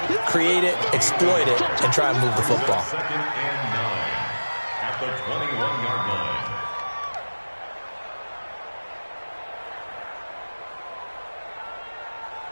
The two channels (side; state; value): both; inverted; correlation -1.00